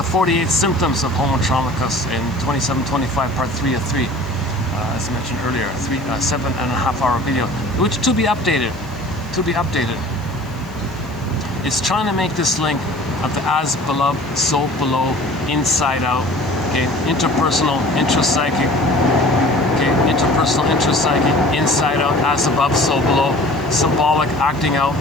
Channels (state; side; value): noise; right; hiss, 26 dB below the sound